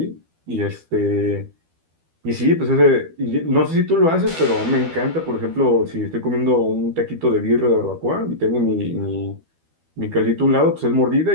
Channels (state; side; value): late; left; 12 ms